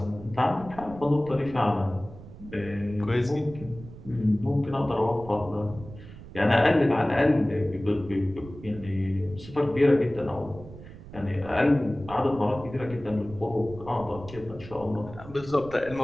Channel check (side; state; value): right; noise; rumble, 16 dB below the sound